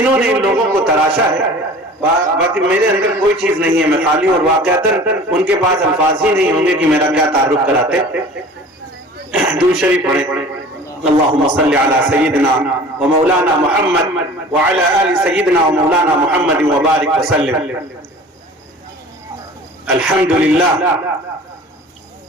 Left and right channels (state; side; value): normal; both; correlation 0.43